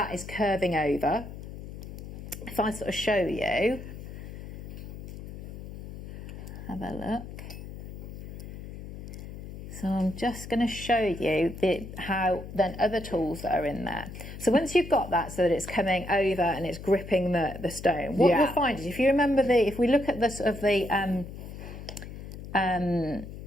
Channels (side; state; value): left; noise; hum, 11 dB below the sound